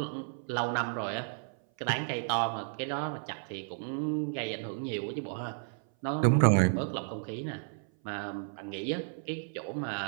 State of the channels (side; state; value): left; silent; 56 dB below the other